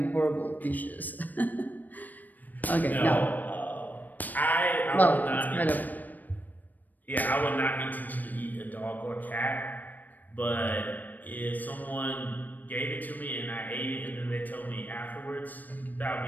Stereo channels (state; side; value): late; right; 0.085 ms